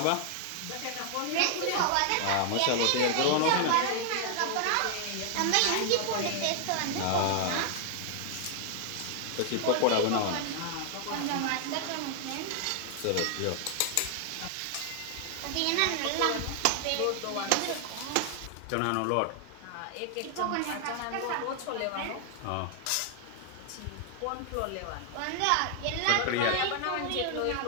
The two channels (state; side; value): different; both; correlation 0.00